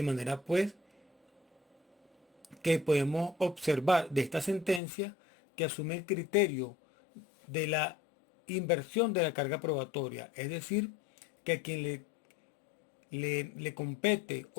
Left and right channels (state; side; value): drops out; right; at 4.8 s